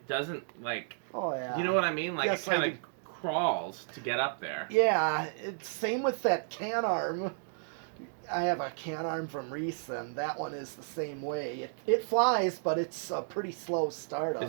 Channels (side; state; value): left; silent; digital silence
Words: doesn't like. Oh yeah. You know what I mean? Like Yes, it kind of crawls to get up there. Yeah, it's same with that can arm. I have a can arm from Reese, and that one is the same way. It flies, but it's a pretty slow startup.